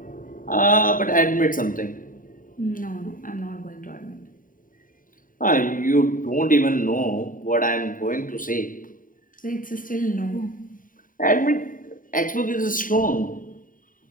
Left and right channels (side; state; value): right; late; 0.39 ms